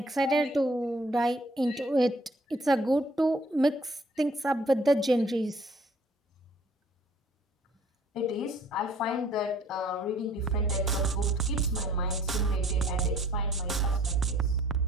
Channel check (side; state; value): both; normal; correlation 0.58